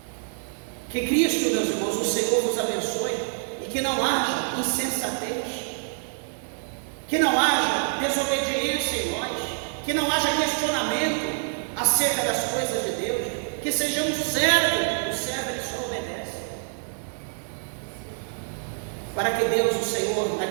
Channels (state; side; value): silent; left; digital silence